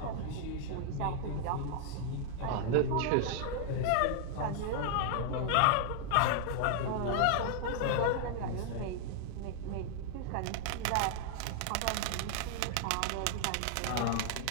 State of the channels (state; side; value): different; both; correlation 0.00